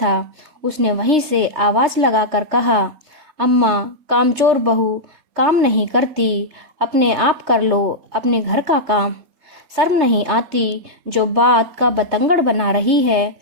उसने वहीं से आवाज लगाकर कहा, अम्मा, कामचोर बहू काम नहीं करती, अपने आप कर लो अपने घर का काम। शर्म नहीं आती जो बात का बतंगड़ बना रही है।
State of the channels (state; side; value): late; left; 3.3 ms